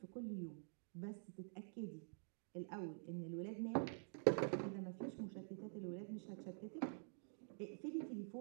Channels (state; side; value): silent; left; digital silence